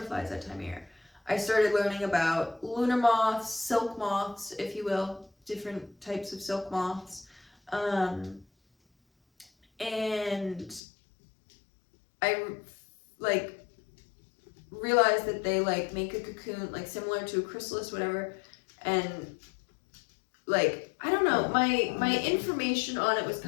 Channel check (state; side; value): drops out; right; at 10.8 s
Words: that time of year. I started learning about lunar moths, silk moths, if you will, different types of silk moths. And I like realized that they like make a cocoon like similar to a chrysalis, whatever, and like I don't know, my information on it was